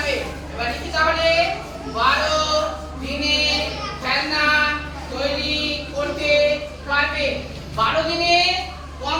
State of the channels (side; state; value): both; identical; correlation 1.00